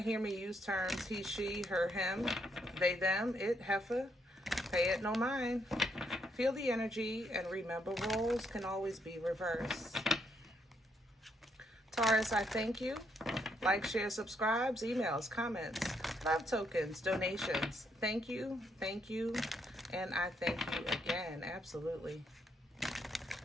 hear me use terms he, she, her, him, they, them, it, heifer. Pay it no mind. Feel the energy and remember roles can always be reversed. Taurus, I thank you. Like, share, subscribes, emails, comments, love tokens, donations. Thank you, and I thank you again. Absolutely.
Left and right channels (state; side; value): normal; both; correlation 0.75